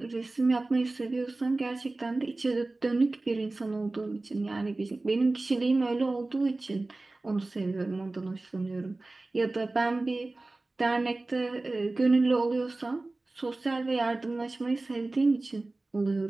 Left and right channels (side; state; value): left; quieter; 3.1 dB